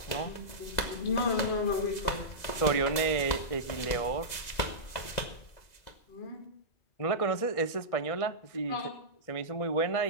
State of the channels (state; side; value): late; right; 2.0 ms